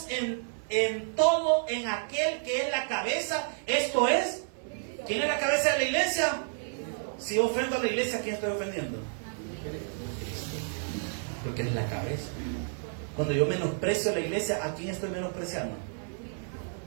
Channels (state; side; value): silent; left; 58 dB below the other